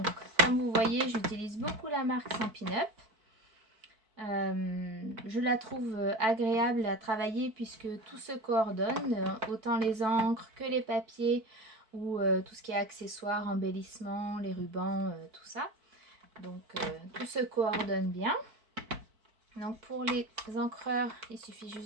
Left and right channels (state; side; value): late; left; 4.5 ms